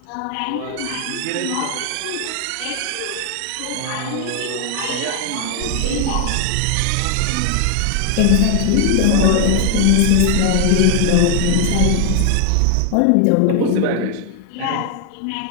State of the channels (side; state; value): both; different; correlation 0.00